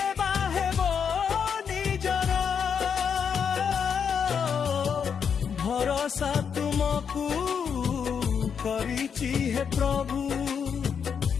बाहेब निजर भरोसा तुमको करिछि हे प्रभु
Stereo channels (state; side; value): quieter; right; 7.0 dB